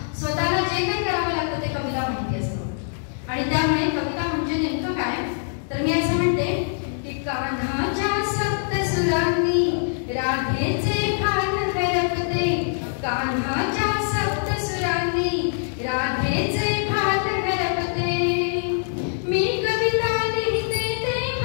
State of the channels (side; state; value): right; silent; digital silence